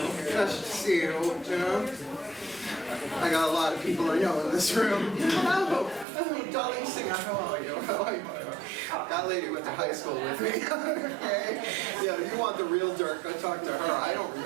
nice to see you, you know? I got a lot of people I know in this room. Oh, Dolly Singer, how are you? That lady went to high school with me. Okay. Yeah, you want the real dirt, go talk to her. I don't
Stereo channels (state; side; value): drops out; left; at 6.1 s